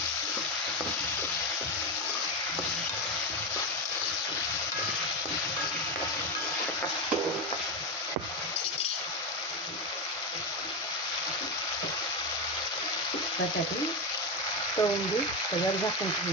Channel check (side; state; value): both; normal; correlation 0.13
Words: बटाटे तळून घेऊ। त्याच्यावर झाकून